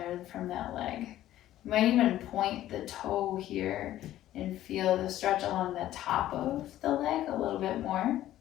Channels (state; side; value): quieter; right; 13.4 dB